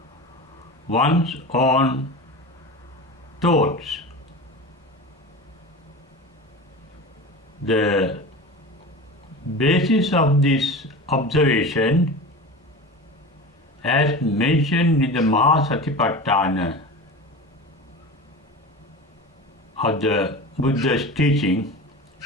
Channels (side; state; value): both; normal; correlation 0.31